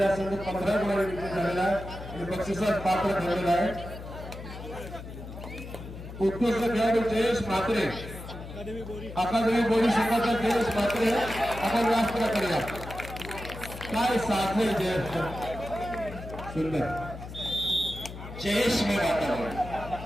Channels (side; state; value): left; noise; hum, 11 dB below the sound